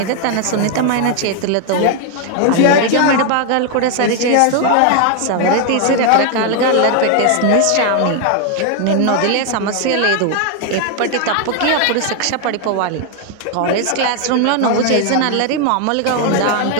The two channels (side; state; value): both; different; correlation 0.00